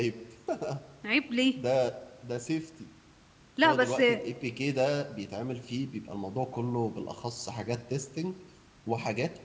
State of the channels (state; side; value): identical; both; correlation 1.00